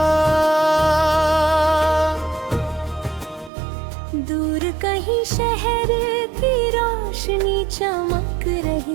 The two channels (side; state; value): left; drops out; at 3.5 s